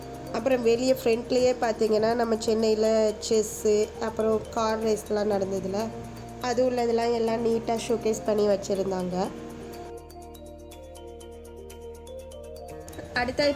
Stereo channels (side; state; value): both; identical; correlation 1.00